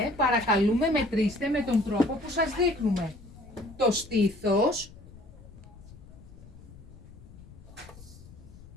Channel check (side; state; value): left; noise; rumble, 19 dB below the sound